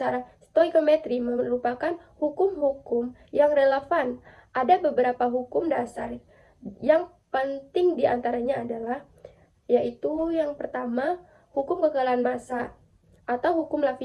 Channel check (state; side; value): identical; both; correlation 1.00